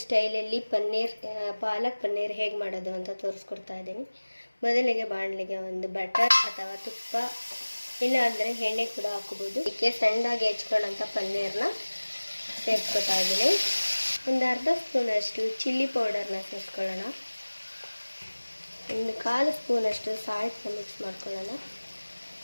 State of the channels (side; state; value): both; inverted; correlation -1.00